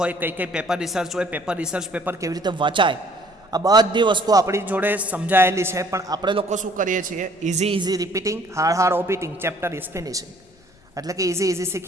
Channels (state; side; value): noise; left; rumble, 30 dB below the sound